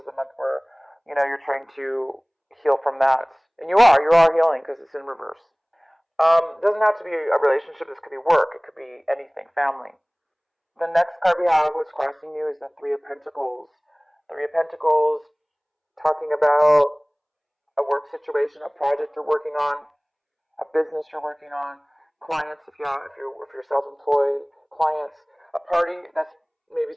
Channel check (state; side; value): identical; both; correlation 1.00